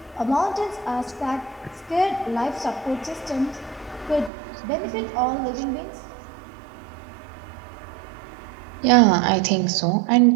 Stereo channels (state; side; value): drops out; left; at 4.3 s